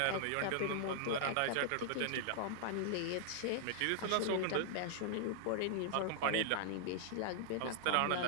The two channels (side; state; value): both; different; correlation -0.01